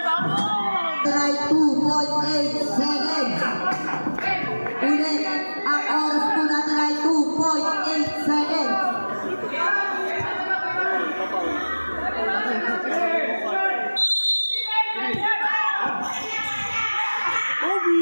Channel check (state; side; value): inverted; both; correlation -1.00